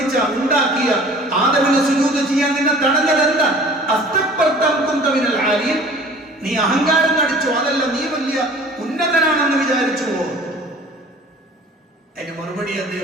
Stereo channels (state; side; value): normal; both; correlation 0.46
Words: ഉണ്ടാക്കിയ ആദമിനെ സുജൂദ് ചെയ്യാൻ നിന്നെ തടഞ്ഞത് എന്താ? അസ്തക്ബർത അം കുൻത മിനൽ ആലീൻ. നീ അഹങ്കാരം നടിച്ചോ? അതല്ല, നീ വലിയ ഉന്നതനാണെന്ന് വിചാരിച്ചുവോ? അതിന് മറുപടി